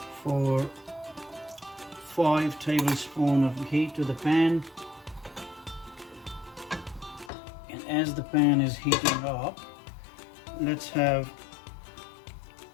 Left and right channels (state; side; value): drops out; right; at 7.3 s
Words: 4, 5 tablespoons of ghee to the pan. And as the pan is heating up, let's have